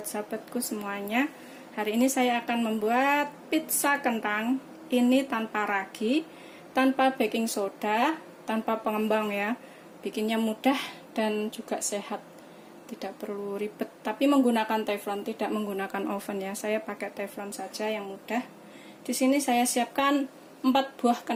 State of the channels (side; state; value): both; identical; correlation 1.00